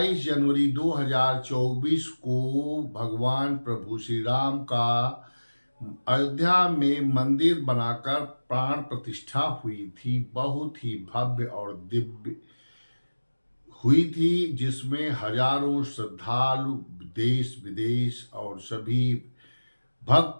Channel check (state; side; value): inverted; both; correlation -1.00